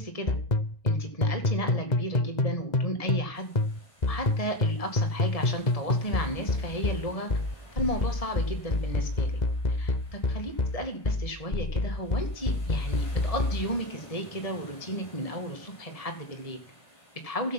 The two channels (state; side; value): late; right; 1.7 ms